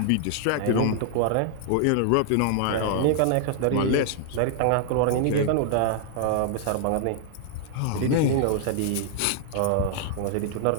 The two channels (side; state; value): both; different; correlation 0.00